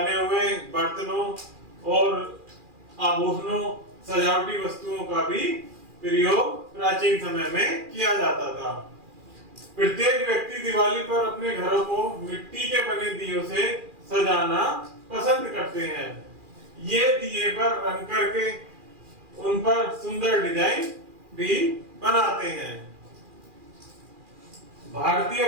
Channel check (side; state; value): left; late; 2.4 ms